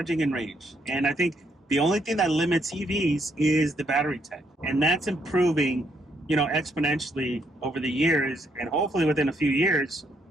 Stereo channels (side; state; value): both; normal; correlation 0.74